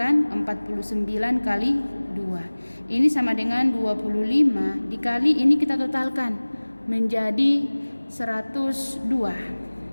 49 kali 2. Ini sama dengan 25 dikali, ini kita totalkan menjadi 102.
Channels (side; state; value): both; inverted; correlation -1.00